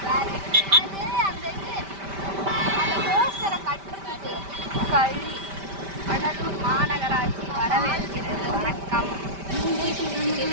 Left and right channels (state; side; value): late; left; 5.1 ms